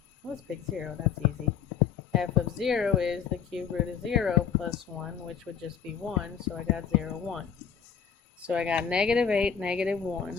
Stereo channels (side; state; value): right; quieter; 7.4 dB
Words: Let's pick 0, that's easy. F of 0 is the cube root of 0 plus 1, which would just be 1, so I got 0, 1. So I got negative 8, negative